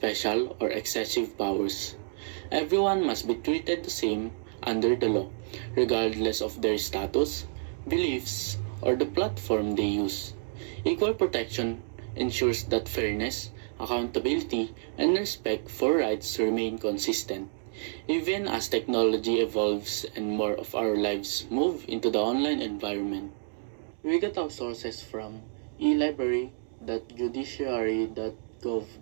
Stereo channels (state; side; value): silent; left; digital silence